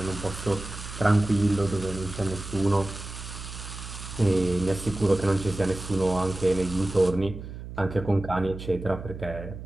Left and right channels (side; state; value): right; noise; hum, 11 dB below the sound